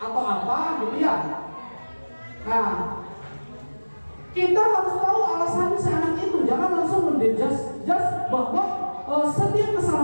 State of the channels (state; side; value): inverted; both; correlation -1.00